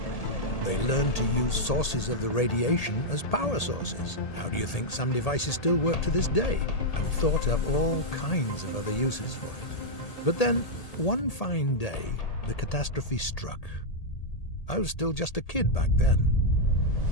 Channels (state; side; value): late; right; 1.8 ms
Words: They learned to use sources of the radiation as power sources. How do you think some devices still work to this day? And thought up all kinds of other uses for it. But then, one fine day, the catastrophe struck. I was still just a kid back then.